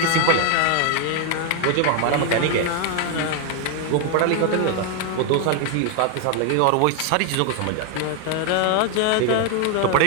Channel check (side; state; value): both; different; correlation 0.01